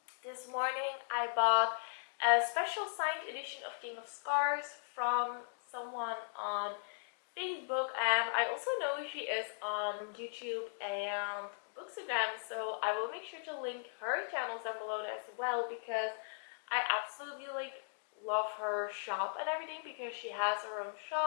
This morning I bought a special signed edition of King of Scars from someone on Facebook, and I also know she is on YouTube and Bookstagram, so I will make sure to link her channels down below as well, because I absolutely love her shop and everything, because she has her own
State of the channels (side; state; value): right; silent; digital silence